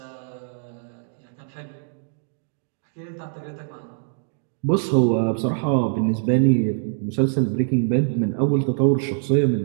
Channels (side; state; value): left; silent; digital silence